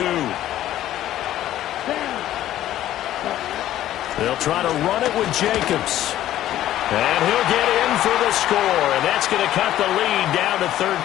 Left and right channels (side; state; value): right; quieter; 13.0 dB